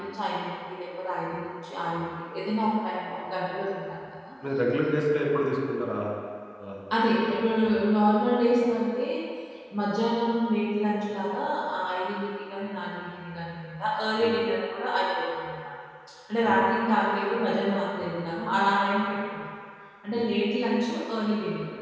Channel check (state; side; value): identical; both; correlation 1.00